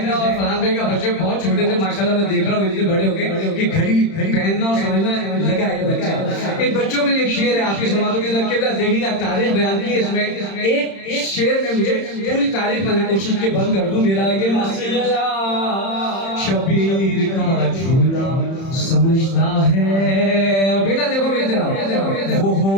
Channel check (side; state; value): right; late; 31 ms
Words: کا اور فرحان بھائی کا بچے بہت چھوٹے تھے ماشاءاللہ, میں دیکھ رہا ہوں اتنے بڑے ہو گئے کہ گھڑی پہننا اور سمجھنا لگا ہے یہ بچہ. ان بچوں کے لیے ایک شعر ہے آپ کی سماعتوں کے اندر, قبلہ دیکھیے گا تاریخ بیان کی اس میں. ایک شعر میں مجھے پوری تاریخ میں نے کوشش کی بند کر دوں. میرا یہ مسئلہ شبیر کا جھولا سمجھتا ہے. اور بیٹا دیکھو مجھے ذرا, وہ